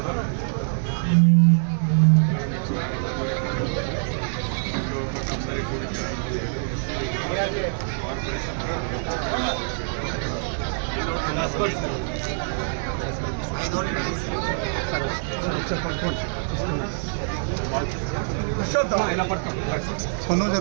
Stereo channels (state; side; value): silent; left; 57 dB below the other